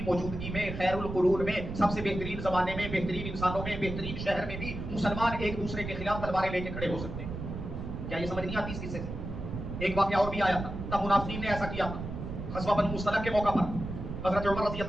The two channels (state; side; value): noise; right; rumble, 7 dB below the sound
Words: موجودگی میں، خیر القرون میں، سب سے بہترین زمانے میں، بہترین انسانوں میں، بہترین شہر میں بھی مسلمان ایک دوسرے کے خلاف تلواریں لے کے کھڑے ہو سکتے ہیں۔ کیا یہ سمجھ نہیں آتی اس قصے سے؟ ایک واقعہ اور بھی آیا تھا، تب منافقین نے ایسا کیا تھا۔ غزوہ بنو مصطلق کے موقع پر حضرت عمر رضی